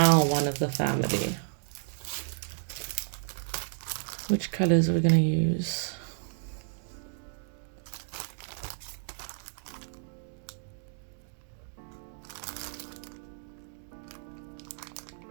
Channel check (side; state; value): left; silent; digital silence